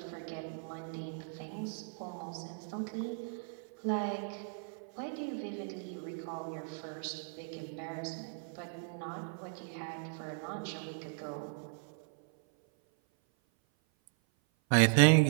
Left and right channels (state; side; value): silent; left; 53 dB below the other